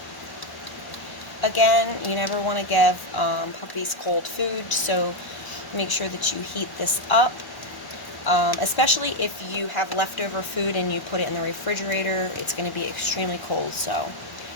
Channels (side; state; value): right; late; 1.1 ms